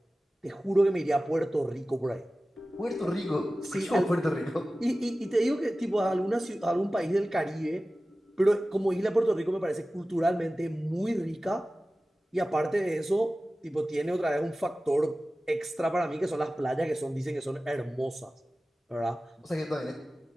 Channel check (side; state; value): both; normal; correlation 0.96